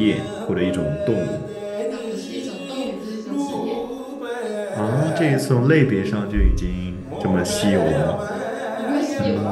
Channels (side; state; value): both; identical; correlation 1.00